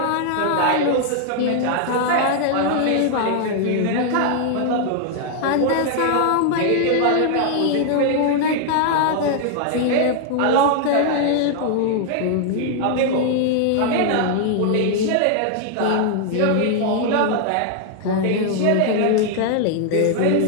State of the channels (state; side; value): different; both; correlation 0.00